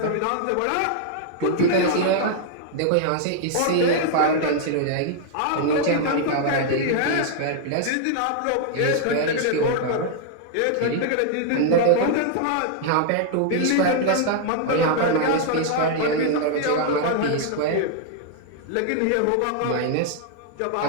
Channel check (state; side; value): different; both; correlation -0.01